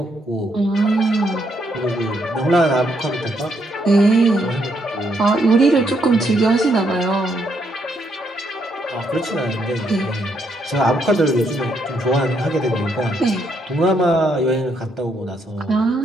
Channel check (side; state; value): both; normal; correlation 0.75